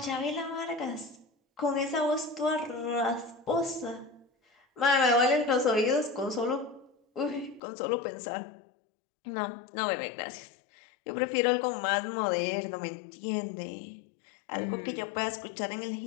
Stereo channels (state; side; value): drops out; right; at 7.6 s